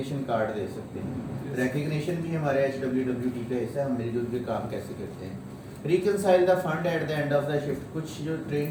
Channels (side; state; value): both; identical; correlation 1.00